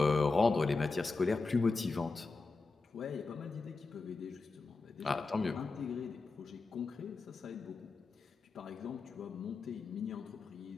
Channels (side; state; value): right; quieter; 3.9 dB